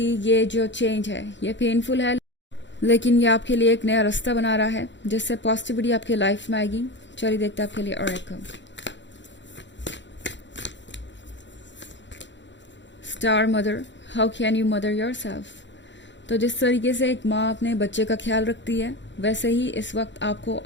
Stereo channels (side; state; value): right; late; 0.53 ms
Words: जो चेंज है ये पेनफुल है, लेकिन ये आपके लिए एक नया रास्ता बना रहा है जिससे पॉजिटिविटी आपके लाइफ में आएगी। चलिए देखते हैं आपके लिए और एक star mother, how can you mother your self. तो जिस तरीके से एक माँ अपने बच्चे का ख्याल रखती है, वैसे ही इस वक्त आपको